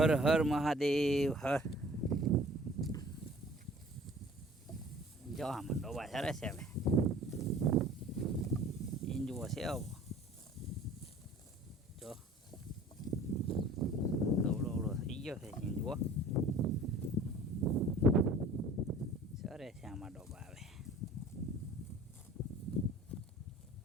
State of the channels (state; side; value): normal; both; correlation 0.49